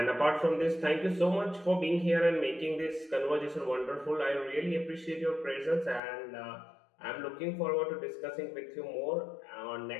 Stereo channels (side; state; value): right; drops out; at 6.0 s